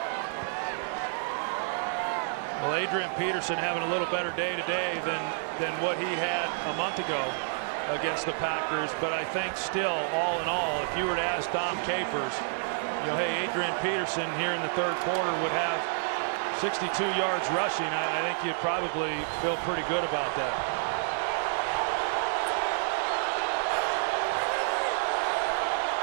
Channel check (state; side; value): silent; left; digital silence